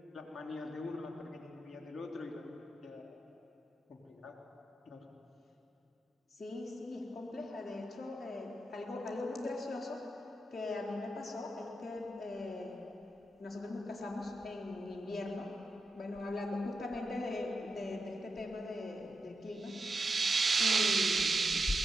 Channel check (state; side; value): normal; both; correlation 0.88